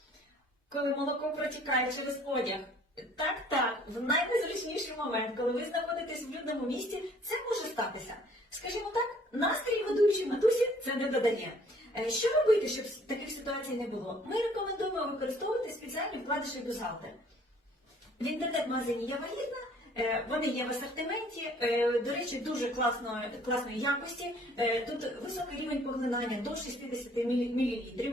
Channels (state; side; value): normal; both; correlation 0.57